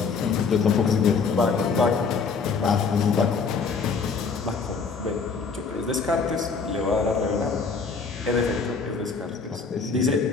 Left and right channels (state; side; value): quieter; right; 5.0 dB